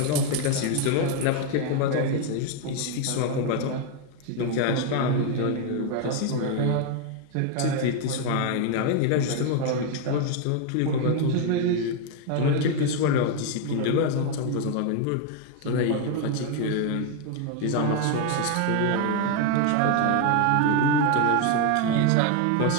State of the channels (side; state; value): both; different; correlation 0.01